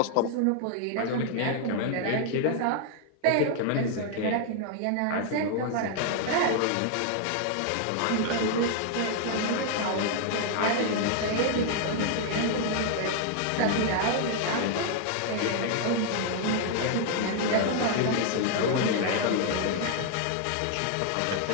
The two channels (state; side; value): different; both; correlation 0.00